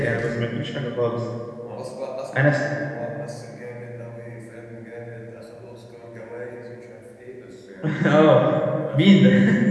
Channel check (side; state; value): both; identical; correlation 1.00